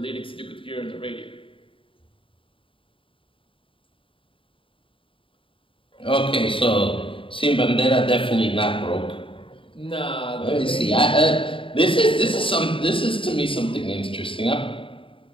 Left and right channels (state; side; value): late; right; 0.25 ms